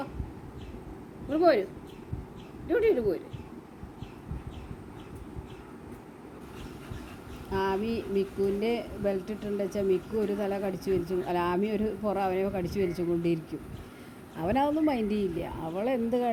ഇവിടെ പോരും, ഡ്യൂട്ടിയിട്ട് പോരും. ആമി മിക്കുവിൻ്റെ ബെൽറ്റ് ഇട്ടുണ്ട് വെച്ചാൽ മിക്കു ഒരു തല കടിച്ചു വലിച്ചു, അല്ല ആമി ഒരു അവനെ കടിച്ചു വലിച്ചു കൊണ്ടിരിക്കും. അവനതൊന്നും മൈൻഡ് ചെയ്യില്ല. അവളെന്ത്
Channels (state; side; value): identical; both; correlation 1.00